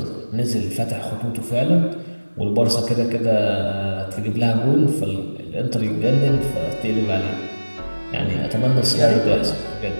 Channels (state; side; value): inverted; both; correlation -1.00